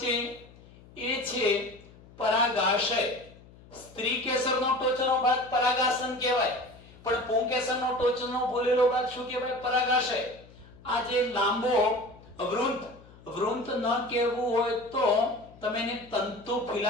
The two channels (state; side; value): noise; left; hum, 23 dB below the sound